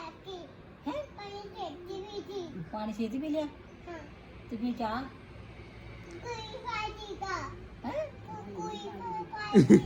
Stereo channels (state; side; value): identical; both; correlation 1.00